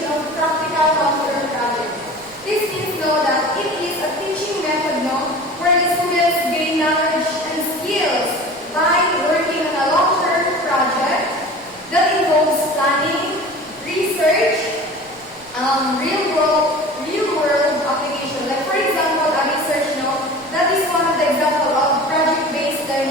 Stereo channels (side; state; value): right; noise; rumble, 28 dB below the sound